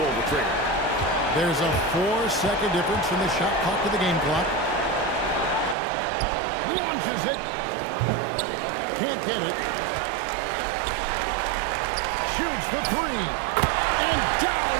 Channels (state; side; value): drops out; left; at 5.8 s